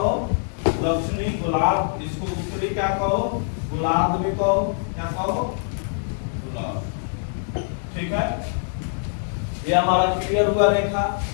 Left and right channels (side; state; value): right; silent; digital silence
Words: दक्षिणी गोलार्ध। इसको उत्तरी क्या कहो? गोलार्ध भी कहो। क्या कहो? गोलार्ध, ठीक है। ये हमारा क्लियर हुआ रेखा।